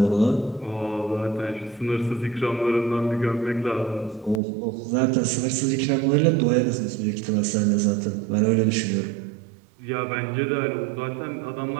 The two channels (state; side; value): drops out; left; at 4.4 s